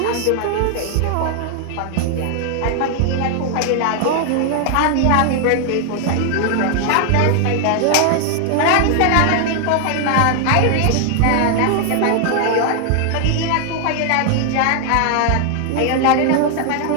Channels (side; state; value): both; different; correlation 0.00